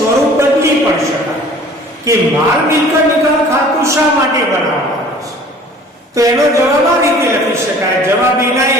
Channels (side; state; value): both; normal; correlation 0.49